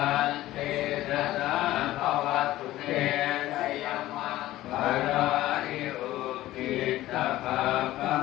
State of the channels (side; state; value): right; quieter; 15.6 dB